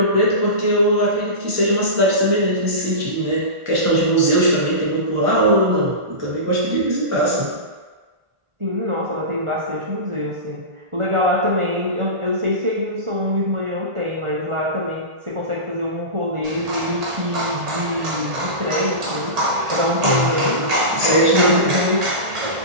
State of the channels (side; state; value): left; late; 1.4 ms